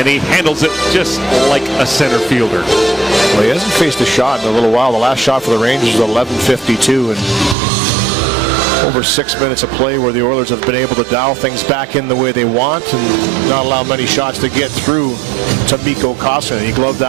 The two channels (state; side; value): drops out; left; at 7.6 s